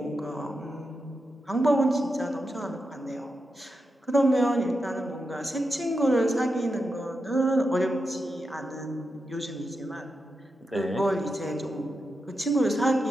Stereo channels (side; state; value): both; normal; correlation 0.88